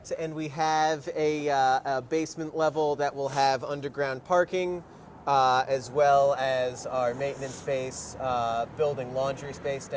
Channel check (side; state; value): both; identical; correlation 1.00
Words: And we have a basement level that will have underground parking, as well as our maintenance space, building laundry space